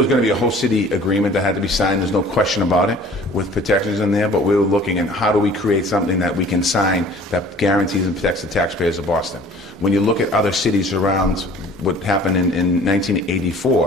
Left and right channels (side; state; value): both; normal; correlation 0.49